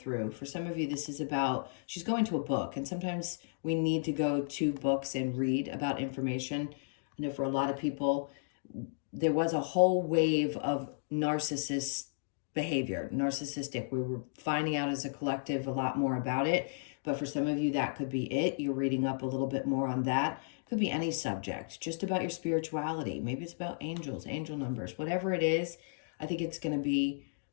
For some of you, this is about, she's going to a book, and sometimes we need to go to books and read about information. I know for a lot of people, there was a whole wave of narcissistic. We were finding out as a collective a lot more about it. But for some of you, that could be it. You're reading up a little bit more on that. It could be any subject, just about your spirituality. Maybe it's about angels, angel numbers, whatever it is. I think it's going to be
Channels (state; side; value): silent; right; digital silence